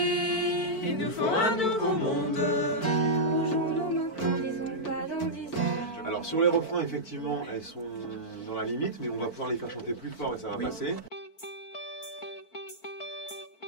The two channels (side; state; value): right; late; 4.5 ms